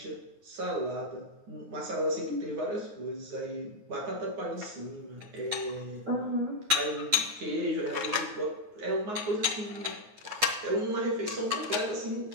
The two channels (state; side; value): late; left; 9.6 ms